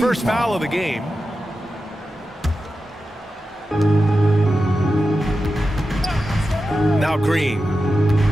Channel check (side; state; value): both; normal; correlation 0.91